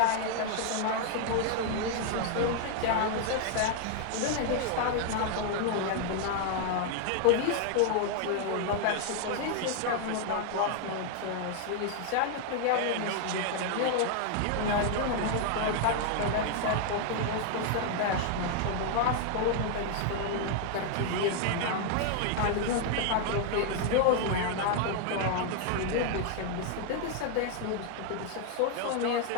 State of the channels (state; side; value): different; both; correlation 0.00